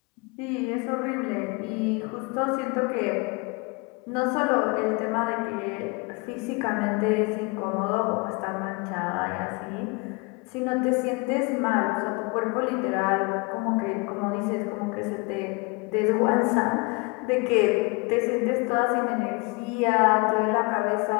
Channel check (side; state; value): right; quieter; 29.0 dB